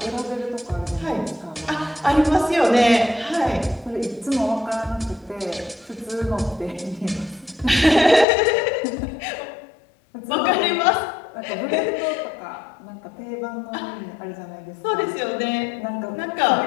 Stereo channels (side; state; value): right; drops out; at 8.2 s